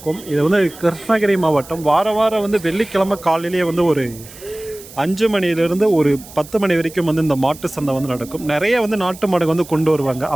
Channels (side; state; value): right; noise; hiss, 18 dB below the sound